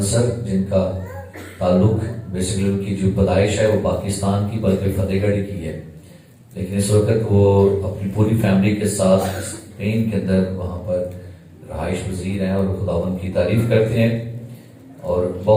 سر, جن کا تعلق بیسیکلی ان کی جو پیدائش ہے وہ پاکستان کی بلکہ فتح گڑھ کی ہے, لیکن اس وقت وہ اپنی پوری فیملی کے ساتھ اسپین کے اندر وہاں پر رہائش پذیر ہیں اور خداوند کی تعریف کرتے ہیں. اور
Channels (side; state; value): both; identical; correlation 1.00